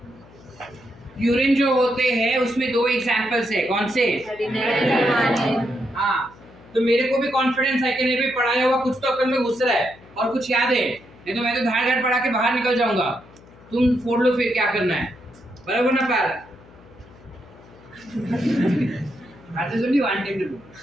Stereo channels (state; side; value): noise; left; hum, 24 dB below the sound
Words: प्यूरिन जो होते हैं उसमें दो एग्जांपल्स है, कौन से? हाँ, तो मेरे को भी कॉन्फिडेंस है कि नहीं भी पढ़ाया हुआ कुछ तो अकल में घुस रहा है और कुछ याद है, नहीं तो मैं तो धाड़ धाड़ पढ़ा के बाहर निकल जाऊंगा। तुम फोड़ लो फिर क्या करना है, बराबर ना पैर? That is only one thing to do.